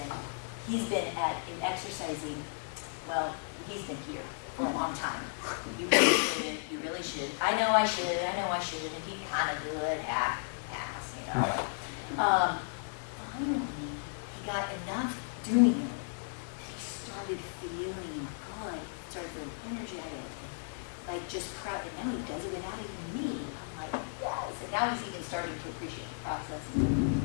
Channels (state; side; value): silent; right; digital silence